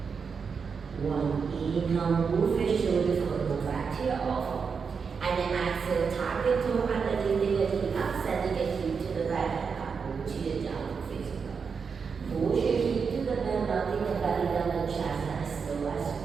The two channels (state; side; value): quieter; left; 5.7 dB